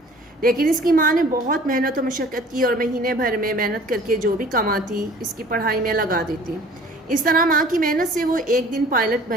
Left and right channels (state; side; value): normal; both; correlation 0.49